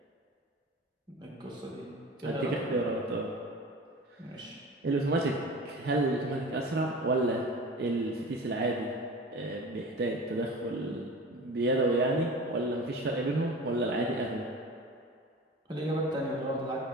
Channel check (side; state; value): both; normal; correlation 0.36